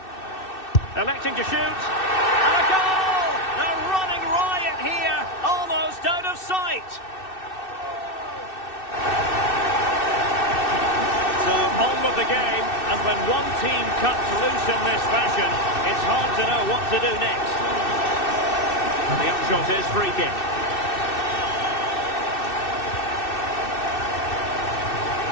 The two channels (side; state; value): right; late; 2.6 ms